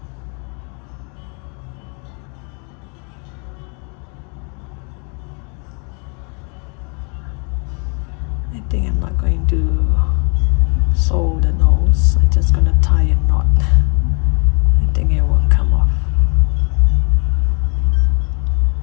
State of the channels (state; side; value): quieter; right; 36.1 dB